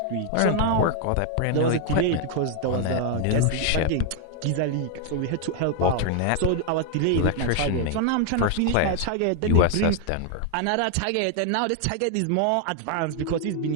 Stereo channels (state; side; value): different; both; correlation 0.00